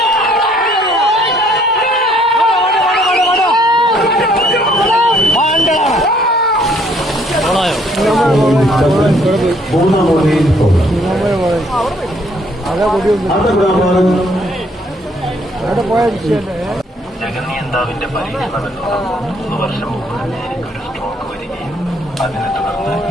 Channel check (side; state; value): both; normal; correlation 0.64